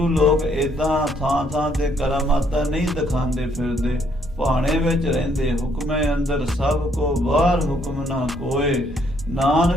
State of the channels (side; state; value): both; normal; correlation 0.69